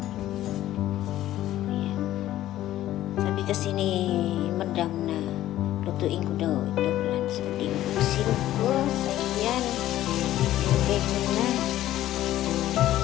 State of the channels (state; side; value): quieter; right; 13.8 dB